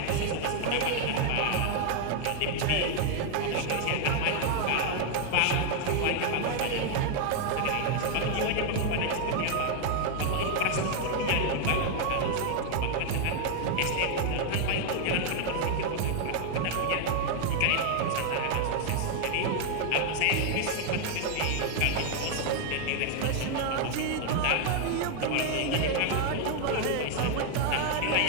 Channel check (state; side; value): different; both; correlation 0.00